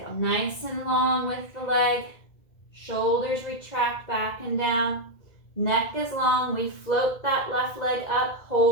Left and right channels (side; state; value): right; late; 1.9 ms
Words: Nice and long with the leg. Shoulders retract back and down. Neck is long. We float that left leg up,